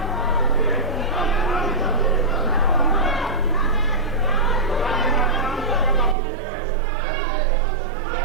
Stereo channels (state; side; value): drops out; left; at 6.2 s